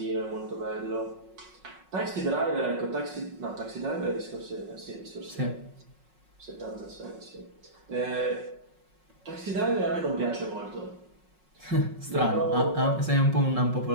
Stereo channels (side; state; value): left; late; 5.4 ms